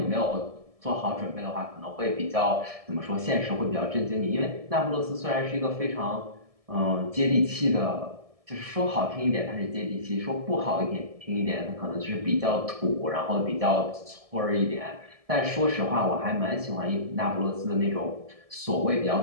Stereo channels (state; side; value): late; left; 1.7 ms